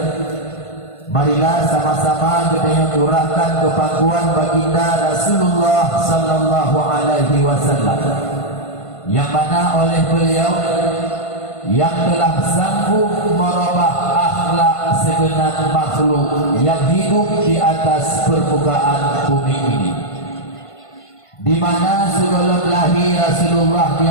marilah sama-sama kita curahkan kepakuan baginda Rasulullah sallallahu alaihi wasallam, yang mana oleh beliau yang telah sanggup merubah akhlak segenap makhluk yang hidup di atas permukaan bumi ini, di mana sebelum lahir Rasulullah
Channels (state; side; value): late; right; 1.5 ms